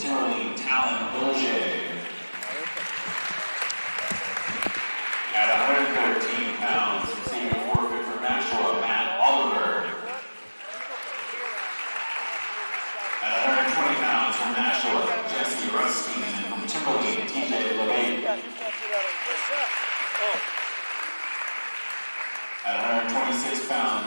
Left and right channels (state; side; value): inverted; both; correlation -1.00